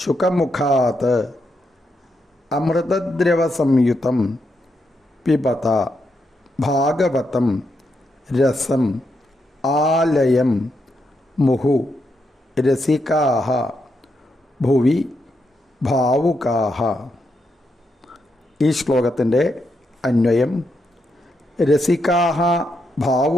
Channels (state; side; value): normal; both; correlation 0.82